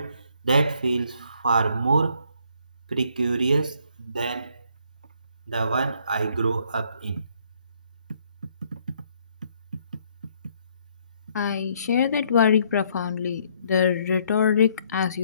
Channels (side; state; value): both; inverted; correlation -0.68